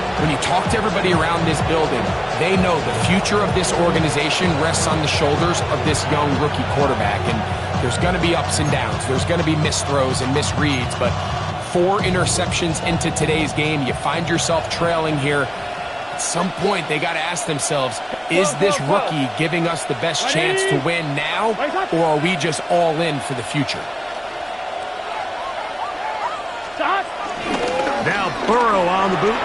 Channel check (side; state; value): both; identical; correlation 1.00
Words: when you talk to everybody around this building, they know the future of this organization rests on the shoulders of this young rookie quarterback. And there's going to be ups and downs. There's going to be missed throws and misreads. But 4 interceptions into today's game, you find yourself trailing here. At some point, they got to ask themselves, is this rookie giving us the best chance to win now, or are we just all in for the future? Now Burrow on the